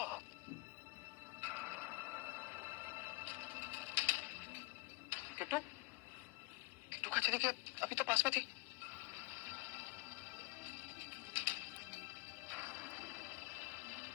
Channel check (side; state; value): right; quieter; 25.1 dB